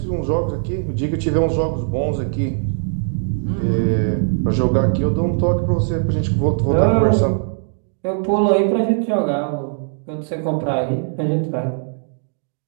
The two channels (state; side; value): silent; left; digital silence